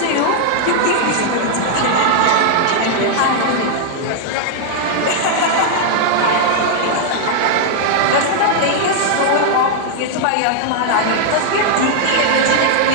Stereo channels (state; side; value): different; both; correlation -0.01